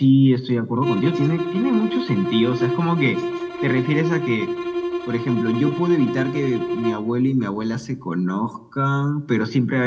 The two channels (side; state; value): both; identical; correlation 1.00